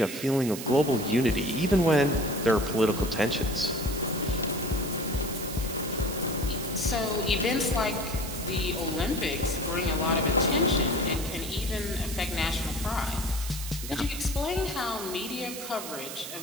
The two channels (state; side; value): noise; right; hiss, 9 dB below the sound